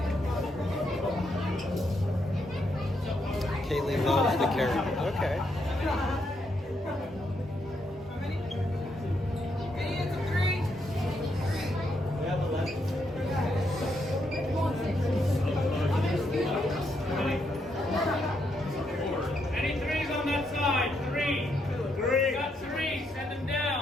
Kaylee loves the character. Okay. Any threes on that side? Three. Got three. Send them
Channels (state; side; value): normal; both; correlation 0.78